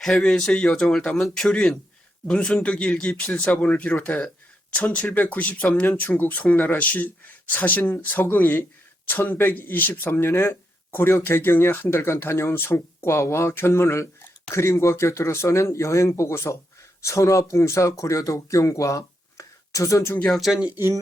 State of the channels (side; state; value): both; normal; correlation 0.81